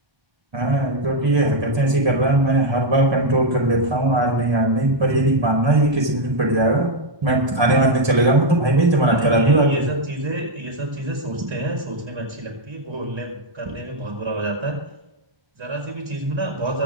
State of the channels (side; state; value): left; late; 1.3 ms